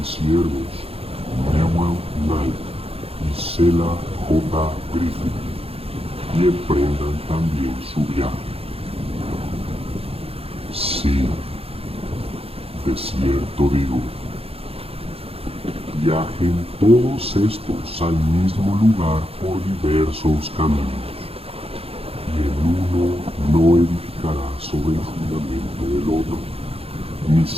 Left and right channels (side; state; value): left; late; 0.28 ms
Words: siervos Newell Knight y Sela J. Griffin, y emprendan también su viaje. Sí, de cierto digo, viajen todos estos al mismo lugar por diversos caminos, y el uno no edificará sobre el fundamento del otro, ni